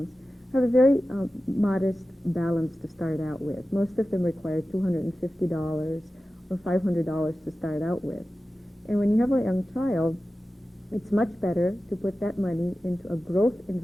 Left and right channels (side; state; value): both; normal; correlation 0.94